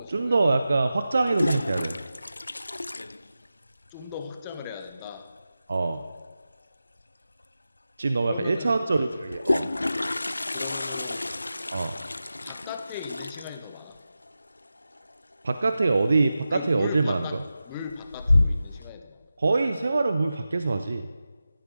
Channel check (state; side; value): inverted; both; correlation -0.93